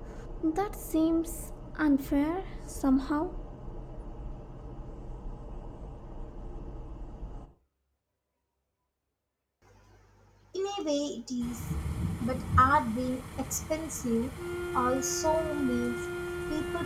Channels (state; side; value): identical; both; correlation 1.00